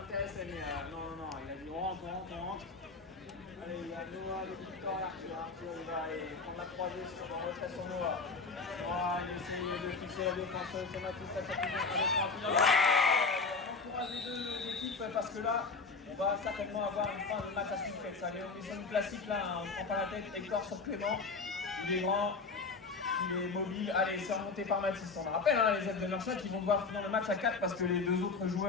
mais non, il a dit on rentre. Allez, il y a Noah, Victor, Arthur, il va aller prendre la croisée sur le retrait sur Noah. Il essaye de fixer la défense, c'est Mathis, ça fait bien, on encourage les 2 équipes parce que là, on va certainement avoir une fin de match à suspense. Allez, on est sur une classique là, on ne prend pas la tête, Hector sur Clément, il est grand, il est mobile. Allez, c'est remonté par Mathis. On rappelle les aides de Merchat qui vont devoir finir le match à 4 parce que les 2 autres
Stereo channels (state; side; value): quieter; right; 4.3 dB